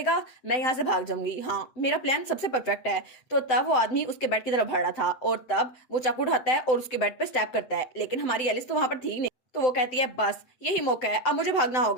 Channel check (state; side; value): late; right; 7.8 ms